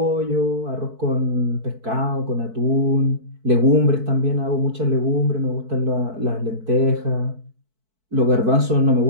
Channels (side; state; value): left; late; 4.5 ms